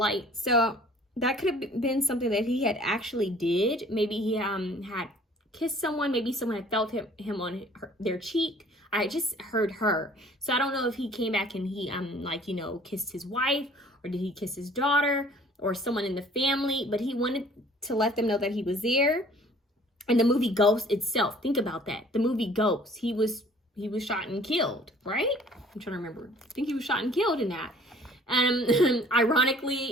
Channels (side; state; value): both; normal; correlation 0.53